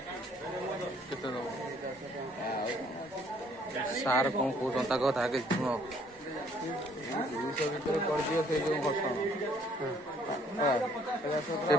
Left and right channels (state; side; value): normal; both; correlation 0.63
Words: କେତେ ଦବ ସାର୍ କଣ କହୁଛନ୍ତି ତାଙ୍କ କଥା ଆଗେ ଶୁଣ। 200 ଭିତରେ କରିଦିଅ ସେଇ ଯୋଉ ଘଟଣା ସେ